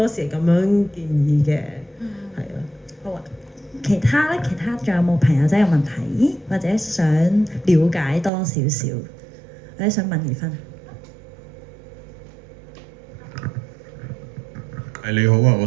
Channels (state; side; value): drops out; left; at 8.3 s